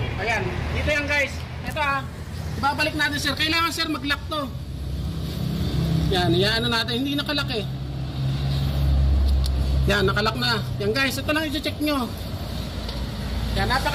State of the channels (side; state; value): both; identical; correlation 1.00